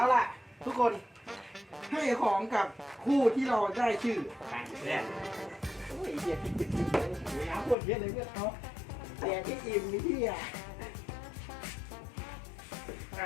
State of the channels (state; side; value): drops out; right; at 7.8 s